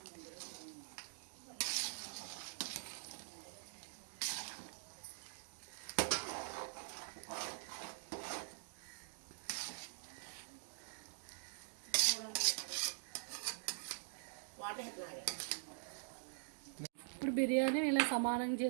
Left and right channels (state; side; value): silent; left; digital silence